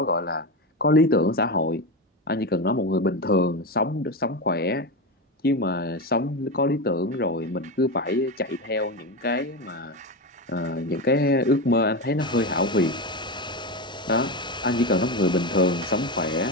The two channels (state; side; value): normal; both; correlation 0.18